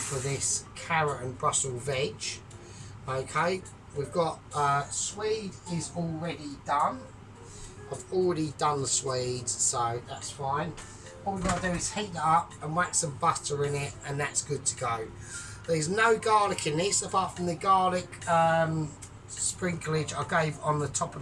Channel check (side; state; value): both; identical; correlation 1.00